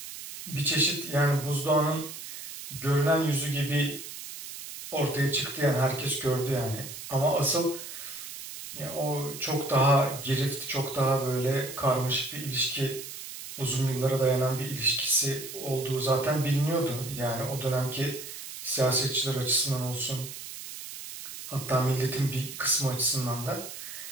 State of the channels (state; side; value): noise; right; hiss, 11 dB below the sound